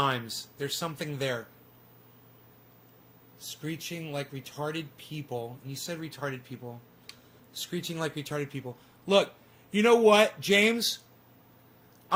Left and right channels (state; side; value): identical; both; correlation 1.00